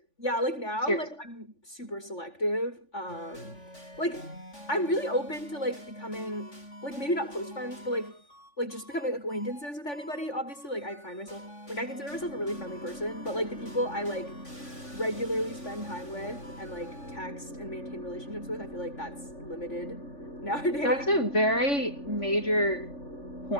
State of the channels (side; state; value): right; late; 3.5 ms